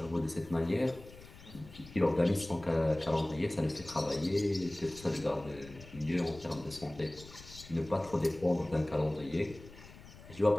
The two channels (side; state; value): left; noise; rumble, 18 dB below the sound